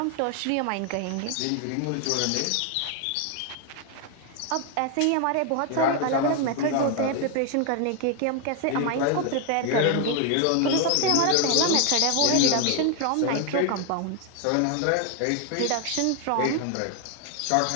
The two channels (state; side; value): different; both; correlation 0.00